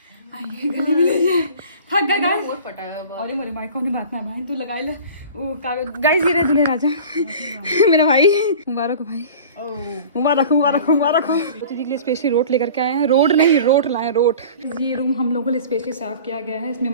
गली में लीजिए। थक गए गाइस, अरे मोरे भाई कौन बात ना भाई, तू लगाई ले वो कागज। गाइस, ये रहे दूल्हे राजा मेरा भाई, मुबारक हो भाई, मुबारक हो। दीदी के लिए स्पेशली रोट लेकर के आए हैं, रोड नहीं रोट लाए, रोट। ये रूम हम लोगों के लिए स्पेशली साफ किया गया है, इसमें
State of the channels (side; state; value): both; inverted; correlation -0.41